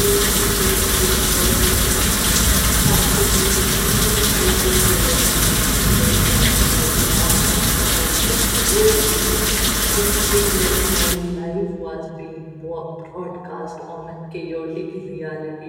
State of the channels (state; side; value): identical; both; correlation 1.00